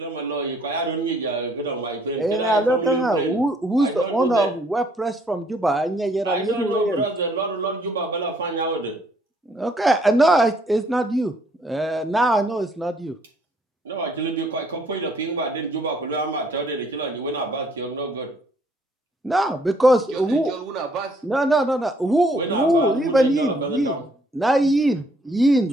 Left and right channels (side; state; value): both; normal; correlation 0.65